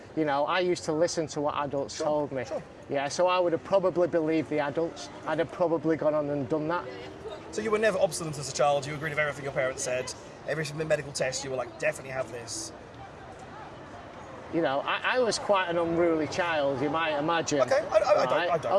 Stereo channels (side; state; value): both; identical; correlation 1.00